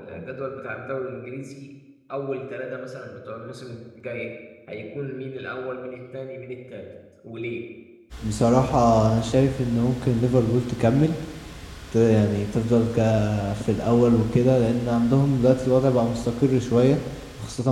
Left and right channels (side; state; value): both; identical; correlation 1.00